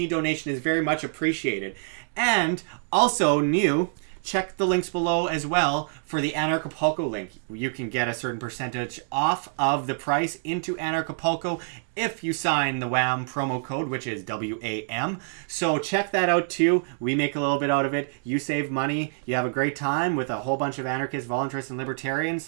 donation is very much appreciated. And also new, check the links below as well for the Anarchapulco link. You can get a certain percentage off of the price into Anarchapulco if you sign the WAM promo code, which is WAM. So check that out too. We make a little bit out of it. You save money. You have a great time with a whole bunch of anarchists, voluntarists, and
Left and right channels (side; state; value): left; silent; digital silence